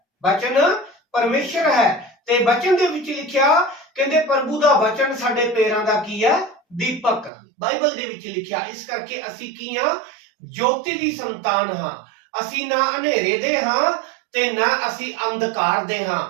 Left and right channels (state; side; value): drops out; left; at 7.3 s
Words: वचन परमेश्वर है ते वचन दे विच लिखिया कहंदे प्रभु दा वचन साडे पैरां दा की है दीपक, बाइबल दे विच लिखिया। इस करके असी की हां? ज्योति दी संतान हां। असी ना अंधेरे दे हां ते ना असी अंधकार दे हां।